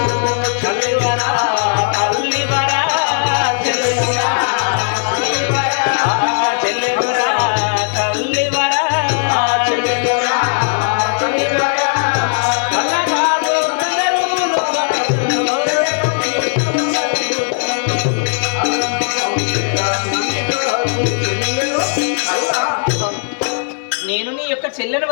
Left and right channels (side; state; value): right; silent; 62 dB below the other